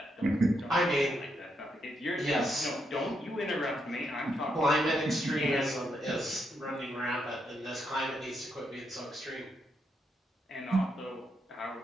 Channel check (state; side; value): normal; both; correlation 0.80